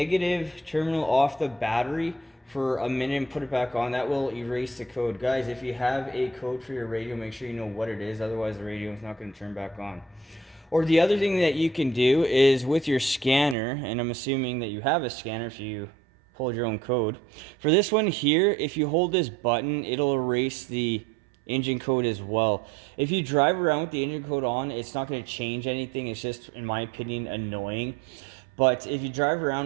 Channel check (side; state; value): left; drops out; at 13.6 s